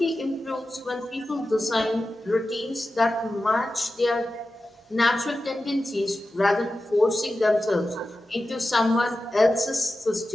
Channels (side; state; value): both; normal; correlation 0.93